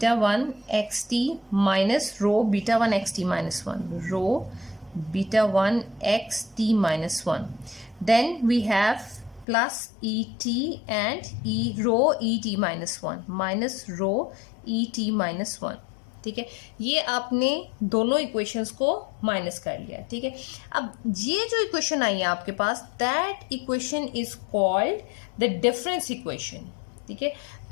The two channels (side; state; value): right; drops out; at 9.5 s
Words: 1 x T minus rho beta 1 x T minus 1, rho beta 1 x T minus 1. Then we have plus et and rho e t minus 1 minus rho e t minus 1. ठीक है, ये आपने दोनों equations को minus कर लिया। ठीक है, अब ये जो इक्वेशन आई है आपके पास, that equation is called the difference equation. ठीक है,